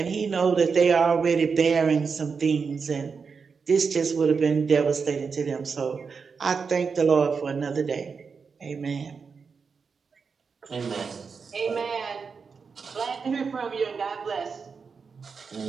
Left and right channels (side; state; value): left; quieter; 5.4 dB